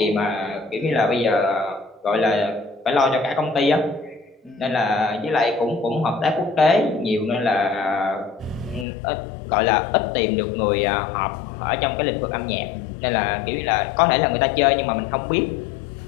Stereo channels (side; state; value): right; drops out; at 8.8 s